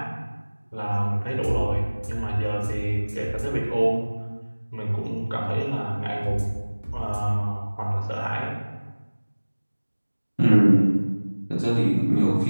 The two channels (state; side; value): inverted; both; correlation -1.00